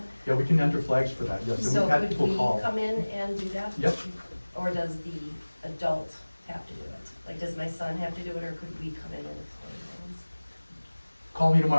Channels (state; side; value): inverted; both; correlation -1.00